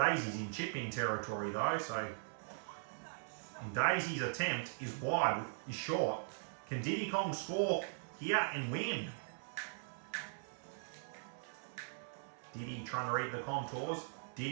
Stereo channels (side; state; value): left; silent; 51 dB below the other